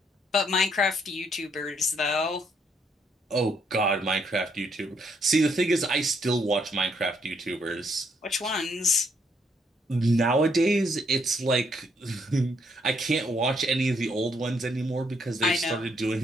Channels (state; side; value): normal; both; correlation 0.72